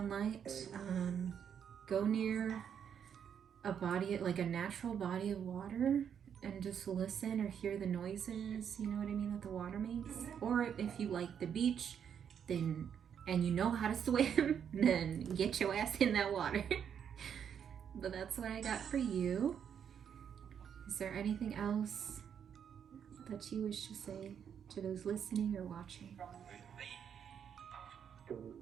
go near a body, like a natural body of water, and just listen or hear the noises, you know what I mean, that the water makes. Or if you like the beach, then, and you know how to swim, then get your ass in that water. But that's what I got for you. Is there anything else that you wish to say to those listening or watching?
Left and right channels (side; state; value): left; quieter; 8.1 dB